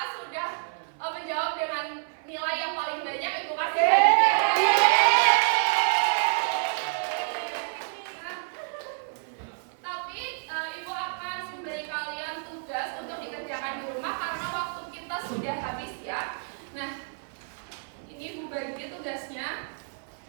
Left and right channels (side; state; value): left; silent; 56 dB below the other